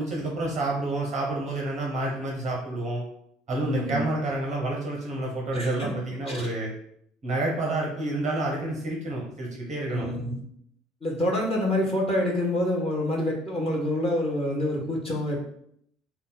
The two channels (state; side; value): normal; both; correlation 0.59